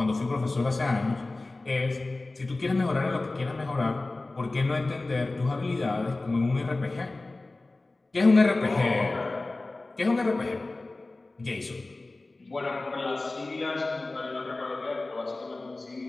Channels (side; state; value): right; quieter; 3.1 dB